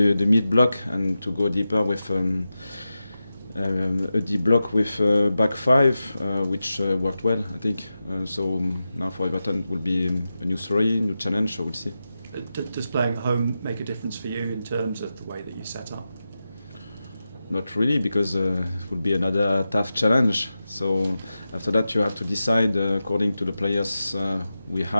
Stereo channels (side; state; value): both; inverted; correlation -0.92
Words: mid block and to go deeper with a deep block with back five, which worked well, I think. So now for Everton it will be a new story, new challenge, so we'll see. Does playing at home make a difference for you in terms of the way that you set up? Not really, because it would be another tough challenge. So after that you have to decide according to the players we